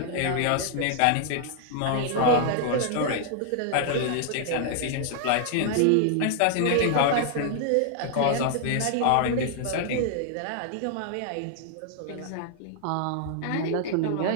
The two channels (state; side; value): different; both; correlation 0.00